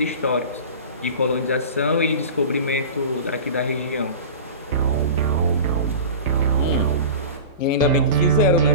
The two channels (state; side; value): inverted; both; correlation -0.34